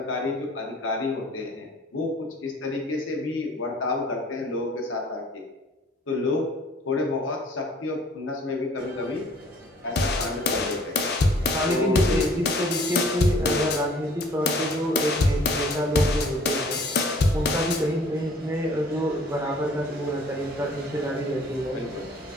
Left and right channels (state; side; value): normal; both; correlation 0.54